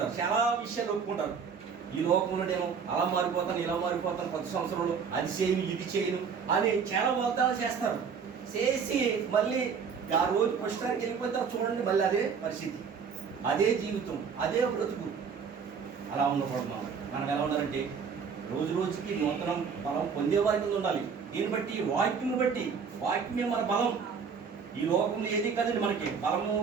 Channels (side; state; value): left; quieter; 6.2 dB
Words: చాలా విషయాలు ఒప్పుకుంటారు. ఈ లోకంలో నేను అలా మారిపోతాను, ఇలా మారిపోతాను, కొత్త సంవత్సరంలో అది చేయను ఇది చేయను అని చాలా వాగ్దానాలు చేస్తారు. చేసి మళ్ళీ ఆ రోజు పుష్టానికి వెళ్ళిపోతారు. చూడండి మళ్ళీ అదే పరిస్థితి, అదే జీవితం, అదే బ్రతుకు. అలా ఉండకూడదు. మనం ఎలా ఉండాలంటే రోజు రోజుకి నూతన బలం పొందే వారి కింద ఉండాలి. దీన్ని బట్టి వాక్యం బట్టి, వాక్యమే మన బలం. ఈ లోకంలో ఏది కదండి మనకి బలము.